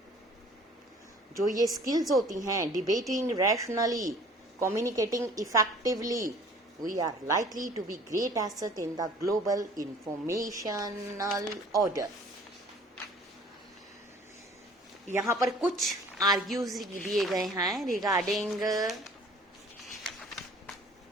जो ये skills होती हैं, debating rationally, communicating effectively, we are likely to be great asset in the global informational order. यहाँ पर कुछ argues दिए गए हैं रिगार्डिंग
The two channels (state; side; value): normal; both; correlation 0.51